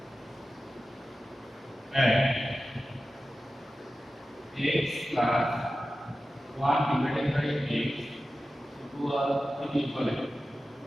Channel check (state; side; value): normal; both; correlation 0.94